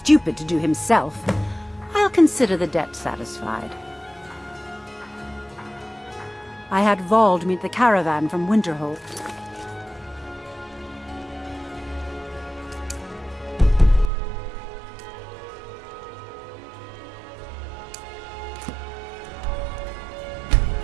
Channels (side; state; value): left; drops out; at 14.1 s